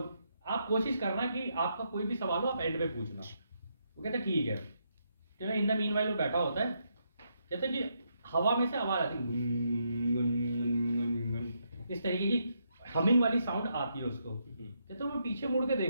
आप कोशिश करना कि आपका कोई भी सवाल हो आप एंड पे पूछना। वो कहते ठीक है। तो इन द मीनवाइल वो बैठा होता है, कहते कि हवा में से आवाज आती है, इस तरीके की हमिंग वाली साउंड आती है उसको। कहते वो पीछे मुड़ के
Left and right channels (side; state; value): both; inverted; correlation -0.78